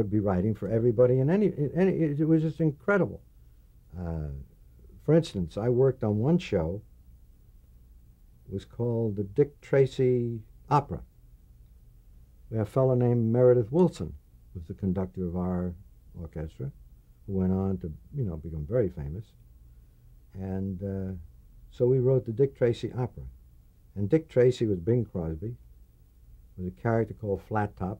be writing for everybody and it was just incredible. For instance, I worked on one show. It was called the Dick Tracy Opera. We had a fellow named Meredith Wilson, who was the conductor of our orchestra, who went on to, become very famous. And so we wrote the Dick Tracy Opera. And Dick Tracy was Bing Crosby. There was a character called Flat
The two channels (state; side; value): identical; both; correlation 1.00